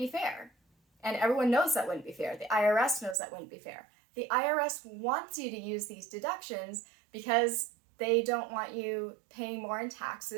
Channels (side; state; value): left; drops out; at 3.2 s